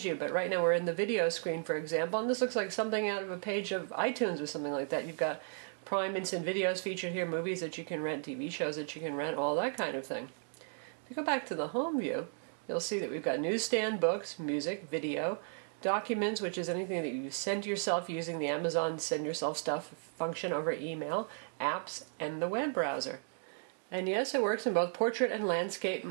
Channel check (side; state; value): left; silent; 55 dB below the other